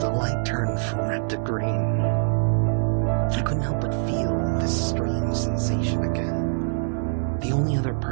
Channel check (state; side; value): silent; left; 62 dB below the other